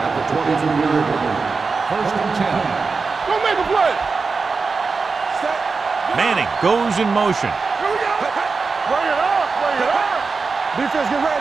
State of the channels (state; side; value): quieter; left; 4.5 dB